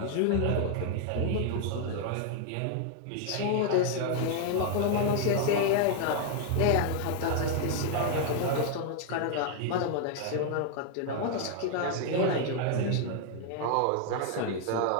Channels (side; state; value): both; different; correlation 0.00